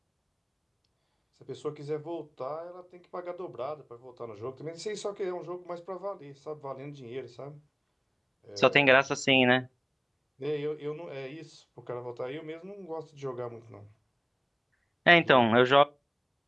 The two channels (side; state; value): both; identical; correlation 1.00